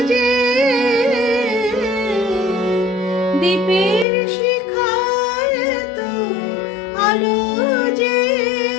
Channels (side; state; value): right; drops out; at 4.0 s